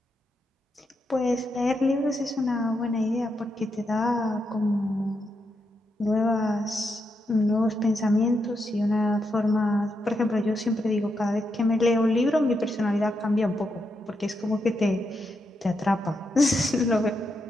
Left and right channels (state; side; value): normal; both; correlation 0.83